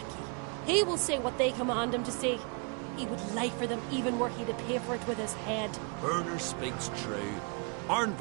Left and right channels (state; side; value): quieter; left; 34.6 dB